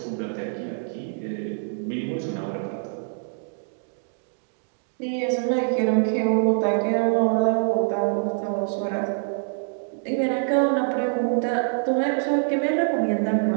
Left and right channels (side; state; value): left; silent; digital silence